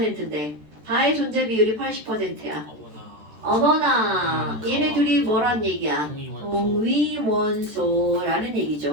다의 존재 비율이 80%야. 어머나 얘네 둘이 뭐란 얘기야? 동위원소라는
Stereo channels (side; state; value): left; late; 13 ms